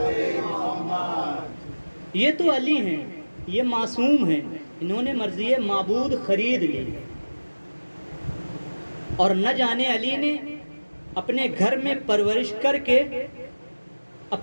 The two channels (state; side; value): inverted; both; correlation -1.00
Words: محمد. یہ تو علی ہیں، یہ معصوم ہیں، انہوں نے مرضی معبود خرید لی، اور نہ جانے علی نے اپنے گھر میں پرورش کر کے